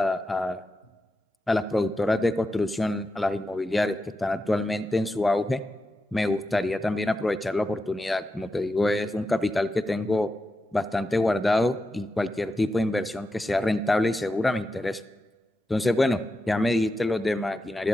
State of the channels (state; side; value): normal; both; correlation 0.89